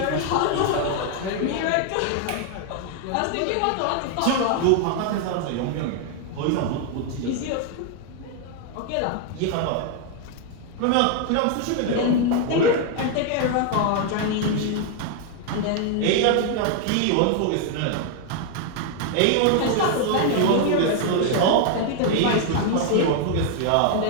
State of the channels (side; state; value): both; different; correlation 0.00